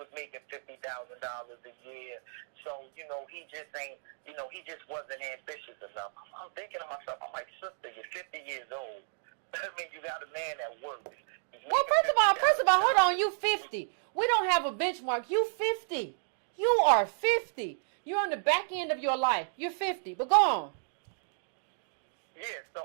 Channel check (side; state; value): left; silent; digital silence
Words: making $50,000 a year. So, he just ain't, he just wasn't ambitious enough. I'm thinking to myself, I'm like, sister, you're 50 years old. I mean, you got a man that works. Well, first of all, hold on, you 50. We don't have a benchmark. You 50. You are 50. You're on the back end of your life. You're 50. But go on. Yeah,